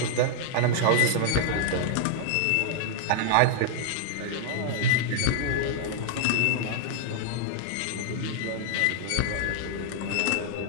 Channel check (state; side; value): different; both; correlation -0.01